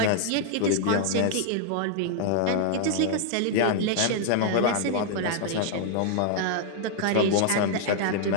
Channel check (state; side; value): different; both; correlation 0.00